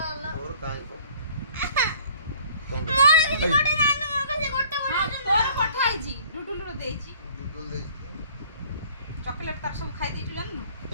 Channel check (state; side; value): inverted; both; correlation -0.54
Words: ହେଲା ତୋର କାଇଁ କୋ ମୋର କିଛି ଗୋଟେ ନାନୁ ମୋର କାছে ଗୋଟେ ହଁ ତୋର ପଠା ହେଇଛି ଡୁଡୁଲୁର ଦେଇଛି ଦୁଦୁ ଦେଇ ଚକୋଲେଟ ତାର ସବୁ ଖାଇ ଦେଇଛୁ ଜାଣିନୁ।